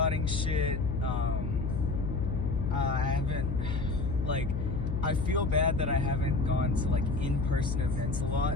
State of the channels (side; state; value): left; noise; hum, 3 dB below the sound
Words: shit. I haven't, like, I feel bad that I haven't gone to like in-person events a